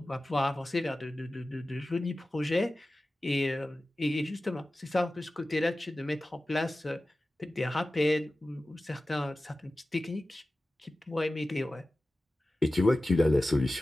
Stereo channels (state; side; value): normal; both; correlation 0.95